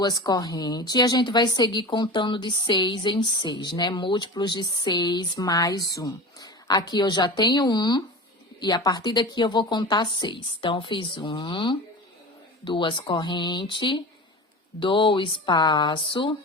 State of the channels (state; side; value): normal; both; correlation 0.31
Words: correntes e a gente vai seguir contando de 6 em 6, né? Múltiplos de 6 mais 1. Aqui eu já tenho 1 e a partir daqui eu vou contar 6. Então, eu fiz 1, 2 correntes, dou o espaço,